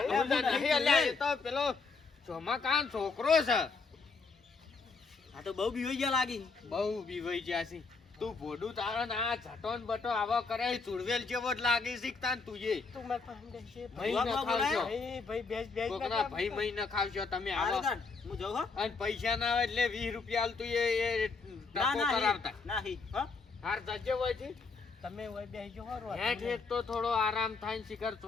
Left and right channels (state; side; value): quieter; right; 4.4 dB